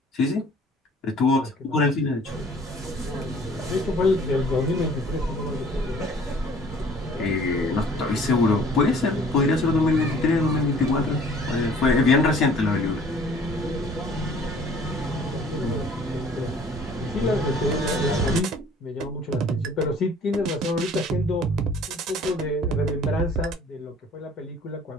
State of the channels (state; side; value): normal; both; correlation 0.52